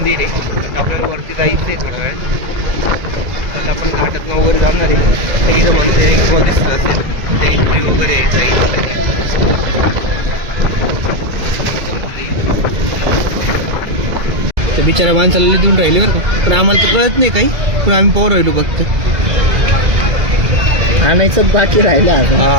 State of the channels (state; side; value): late; left; 2.0 ms